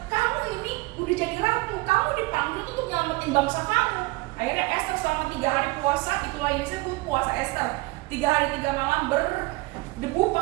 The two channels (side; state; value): left; quieter; 23.0 dB